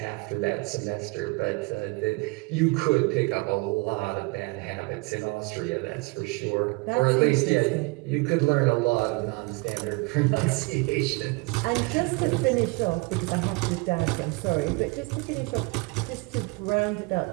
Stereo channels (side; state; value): left; quieter; 26.8 dB